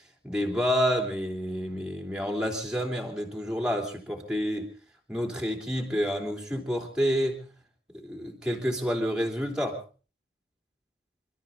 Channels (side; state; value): both; normal; correlation 0.81